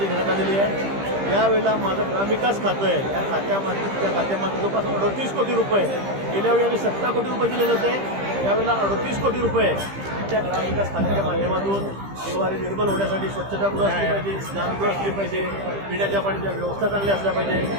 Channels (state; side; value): late; left; 15 ms